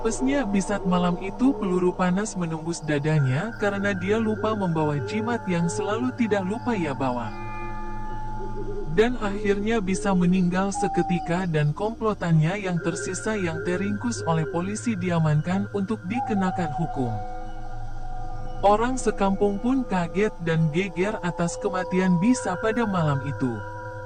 Bisat malam itu peluru panas menembus dadanya karena dia lupa membawa jimat yang selalu tidak lupa ia bawa. Dan akhirnya bisa meninggal seketika dan komplotannya yang tersisa yang teringkus oleh polisi diamankan untuk dikenakan hukum. Orang sekampung pun kaget dan geger atas kematian Bisa pada malam itu.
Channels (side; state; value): both; identical; correlation 1.00